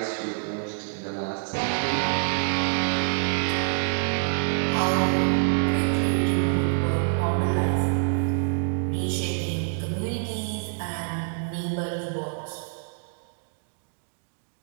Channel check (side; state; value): left; silent; 61 dB below the other